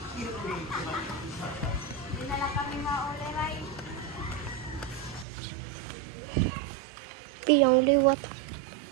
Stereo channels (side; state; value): left; drops out; at 5.2 s